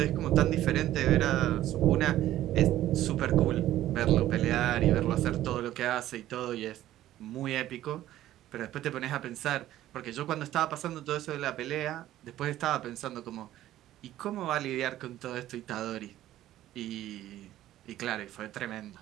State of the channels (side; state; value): left; quieter; 13.7 dB